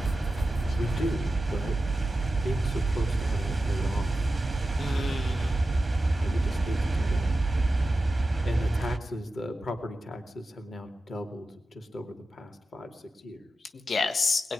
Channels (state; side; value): normal; both; correlation 0.92